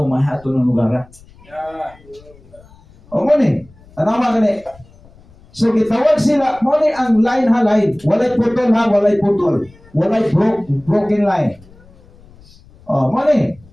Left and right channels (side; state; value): left; noise; rumble, 26 dB below the sound